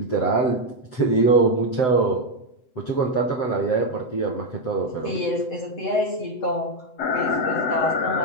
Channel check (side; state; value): right; late; 7.9 ms